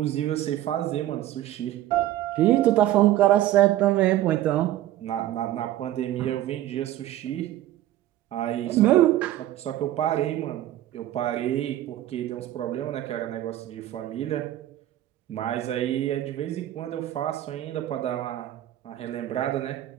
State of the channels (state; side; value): quieter; left; 13.6 dB